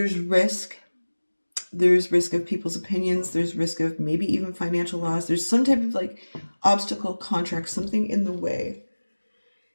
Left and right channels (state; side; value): inverted; both; correlation -1.00